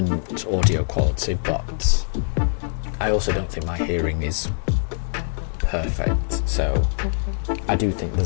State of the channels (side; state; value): right; silent; 60 dB below the other